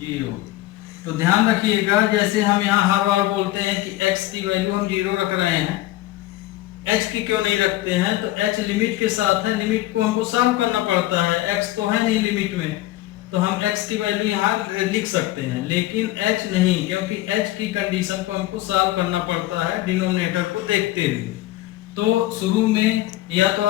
तो ध्यान रखिएगा, जैसे हम यहाँ हर बार बोलते हैं कि x की वैल्यू हम 0 रख रहे हैं, h की क्यों नहीं रखते हैं, तो h लिमिट के साथ है, लिमिट को हमको सॉल्व करना पड़ता है, x तो है नहीं लिमिट में, तो हम x की वैल्यू यहाँ लिख सकते हैं, लेकिन h नहीं, क्योंकि h की कंडीशन को हमको सॉल्व करना पड़ता है डिनोमिनेटर को देखते हुए। तो शुरू में या तो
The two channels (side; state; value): right; quieter; 16.3 dB